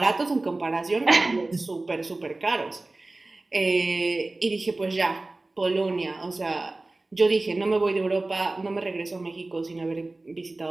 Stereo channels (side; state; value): left; quieter; 3.0 dB